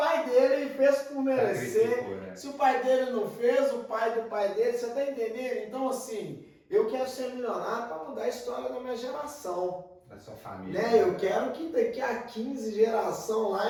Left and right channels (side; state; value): both; identical; correlation 1.00